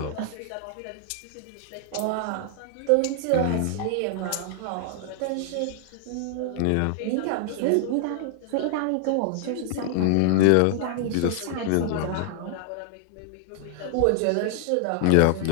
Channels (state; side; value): different; both; correlation 0.00